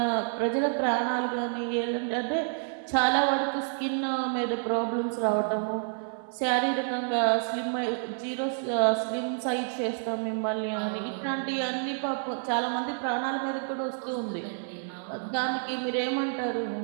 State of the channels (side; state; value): left; silent; 59 dB below the other